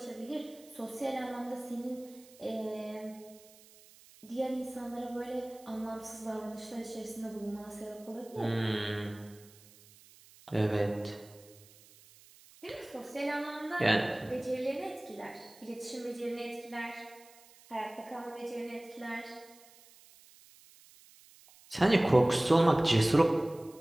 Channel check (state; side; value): noise; right; hiss, 24 dB below the sound